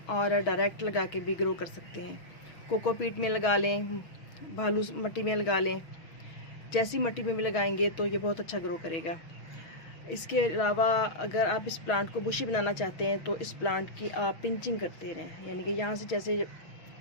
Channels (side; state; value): right; late; 6.3 ms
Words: और डायरेक्ट लगा के भी ग्रो कर सकते हैं। कोकोपीट में लगा लें, भालू मिट्टी में लगा लें, जैसी मिट्टी में भी लगाएंगे तो ये बहुत अच्छा ग्रो करेगा। इसके अलावा अगर आप इस प्लांट को बुशी बनाना चाहते हैं तो इस प्लांट की आप पिंचिंग करते रहें, यानी कि यहाँ से जैसे